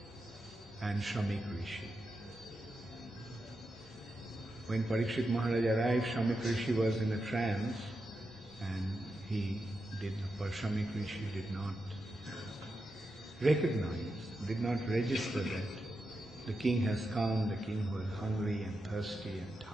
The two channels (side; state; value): both; normal; correlation 0.88